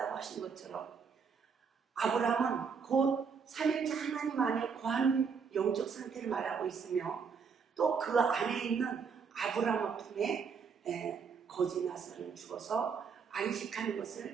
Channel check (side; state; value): left; quieter; 5.9 dB